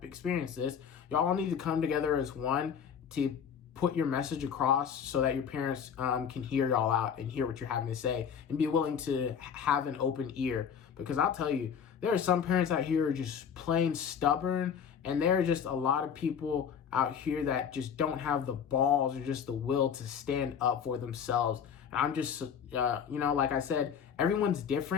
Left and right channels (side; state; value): right; quieter; 7.5 dB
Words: experienced this. Y'all all need to come together as one to put your message across so that your parents can hear y'all out and hear what you're having to say and be willing to have an open ear. Because I'll tell you, there are some parents out here who are just plain stubborn, and there are just a lot of people out here that just don't have the balls or just the will to stand up for themselves. And I'm just, like I said, everyone's